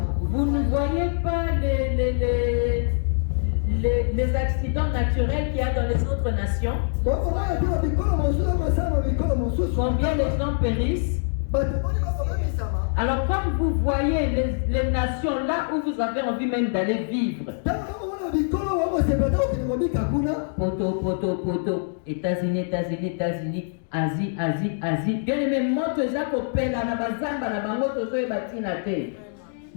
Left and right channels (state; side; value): silent; right; digital silence